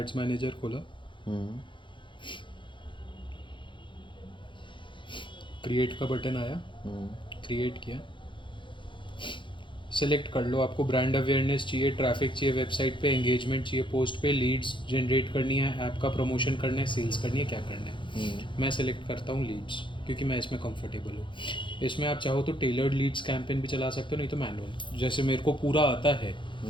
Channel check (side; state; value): right; late; 0.24 ms